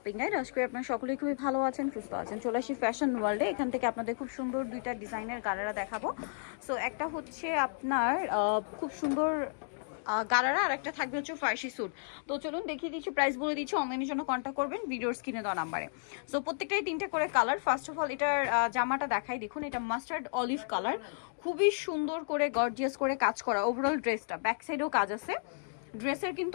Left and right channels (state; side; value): silent; right; digital silence